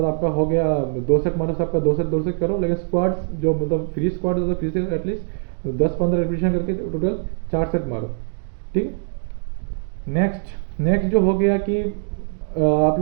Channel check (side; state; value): left; silent; 57 dB below the other